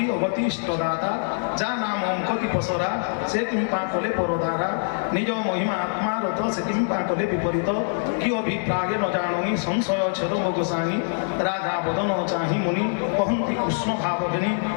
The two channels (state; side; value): silent; right; 62 dB below the other